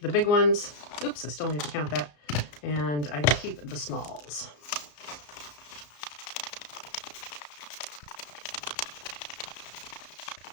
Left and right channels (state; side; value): late; right; 34 ms